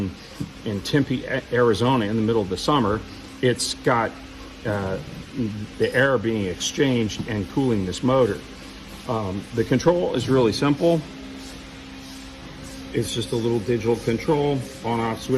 Tempe, Arizona in the middle of the summer, it's got the air being exchanged and cooling this motor. The control is really simple. It's just a little digital control, on-off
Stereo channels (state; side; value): identical; both; correlation 1.00